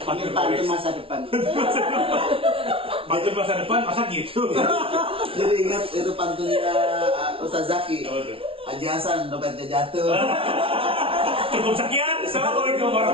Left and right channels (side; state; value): left; late; 0.26 ms